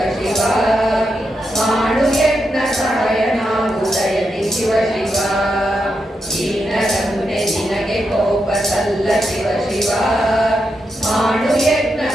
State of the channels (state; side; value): normal; both; correlation 0.84